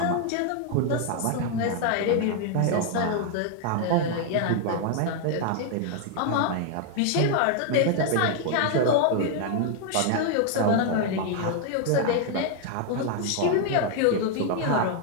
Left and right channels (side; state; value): both; different; correlation 0.00